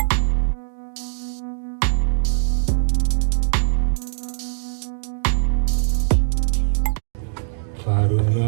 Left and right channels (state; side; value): silent; left; digital silence